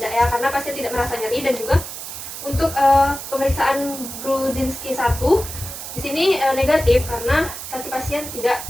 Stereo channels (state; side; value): noise; right; hiss, 9 dB below the sound